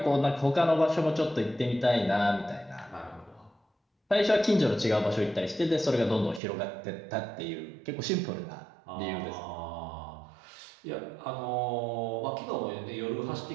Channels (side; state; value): left; drops out; at 6.4 s